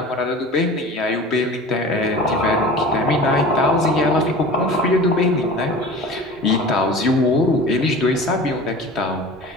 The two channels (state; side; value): normal; both; correlation 0.38